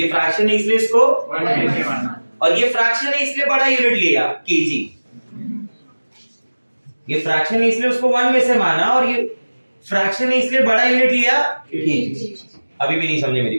फ्रैक्शन है इसलिए इसको 1 में से माना, और ये फ्रैक्शन है इसलिए बड़ा यूनिट लिया kg। ये फ्रैक्शन है इसलिए उसको 1 में से माना, और ये फ्रैक्शन है इसलिए बड़ा यूनिट लिया kg। अभी भी नहीं समझे मेरी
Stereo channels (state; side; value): inverted; both; correlation -1.00